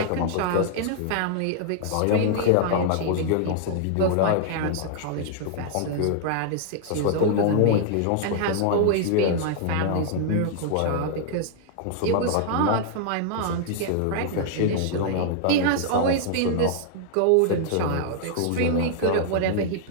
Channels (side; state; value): both; different; correlation -0.01